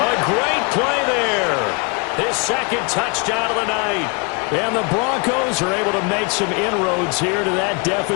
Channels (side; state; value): right; quieter; 31.9 dB